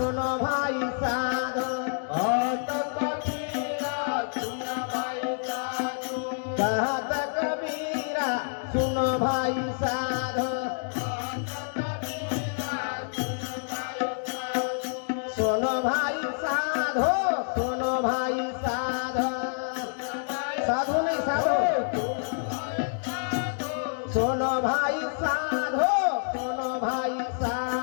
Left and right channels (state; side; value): silent; right; digital silence